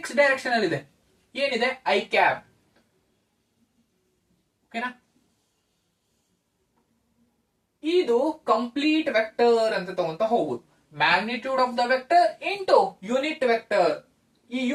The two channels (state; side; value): identical; both; correlation 1.00